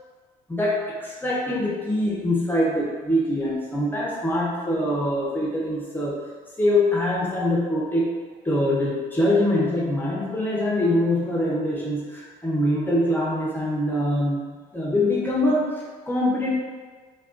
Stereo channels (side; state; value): both; normal; correlation 0.69